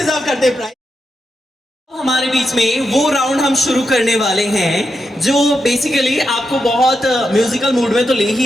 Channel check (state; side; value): normal; both; correlation 0.86